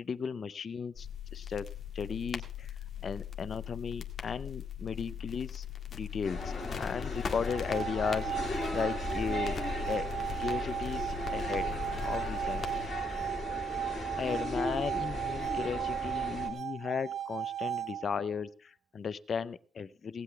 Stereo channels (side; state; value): both; normal; correlation 0.72